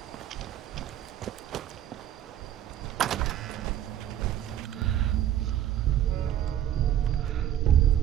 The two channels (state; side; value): quieter; left; 11.2 dB